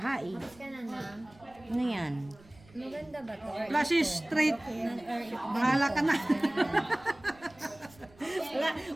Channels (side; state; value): right; noise; rumble, 25 dB below the sound